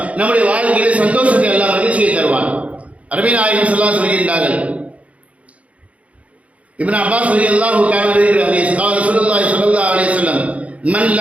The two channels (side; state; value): left; late; 0.065 ms